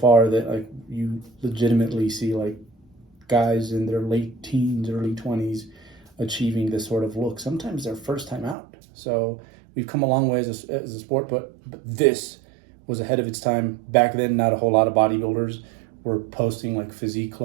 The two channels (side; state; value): left; drops out; at 8.6 s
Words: that like you legitimately see like guys in their late teens, early 20s achieving this sort of look. Sometimes their first time out. So we've come a long way as a sport, but this was ahead of its time. Back then, not a whole lot of bodybuilders were posting like physique